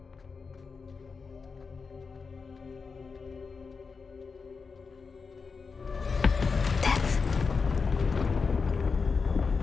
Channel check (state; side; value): quieter; right; 5.0 dB